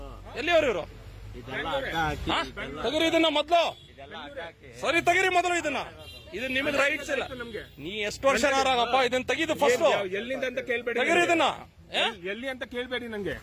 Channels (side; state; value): both; identical; correlation 1.00